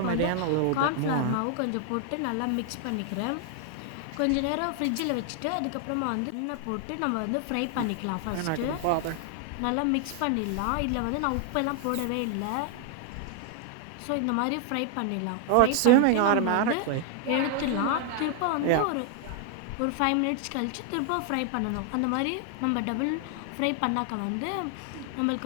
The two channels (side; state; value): both; different; correlation 0.00